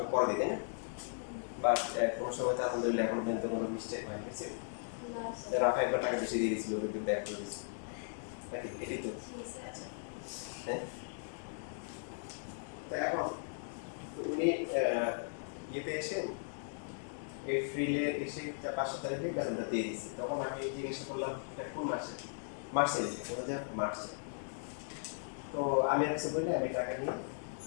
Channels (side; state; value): right; silent; digital silence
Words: পরে দিলে বাট কোনো সময় তো আলহামদুলিল্লাহ এখন পর্যন্ত কোনো মিস্টেক হয় গেছে রাফা একবার টাকা বেশি দিয়ে দিয়েছিল ওকে ব্যাক করে দিয়েছি নাকি এটাই তো হ্যাঁ তো এখন উনি ইয়েতে এসে এপ্রিলে এসে 5 তারিখে বেতনটা দিয়ে দিয়েছে তখন আমি জিজ্ঞাসা করলাম এটা কোন মাসে মার্চে দিয়েছে বলে যে মার্চে তো আমি কিছু বলি আমি টাকা নিয়ে